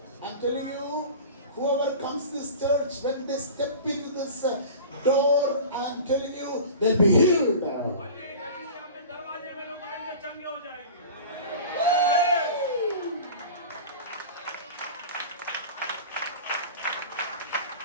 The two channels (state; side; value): inverted; both; correlation -0.36